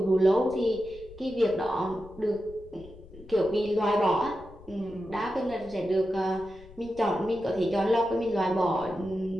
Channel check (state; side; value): noise; left; rumble, 20 dB below the sound